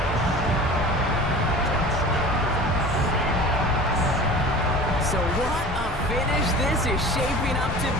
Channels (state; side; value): normal; both; correlation 0.39